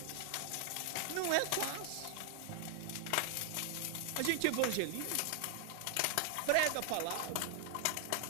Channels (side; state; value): both; different; correlation 0.00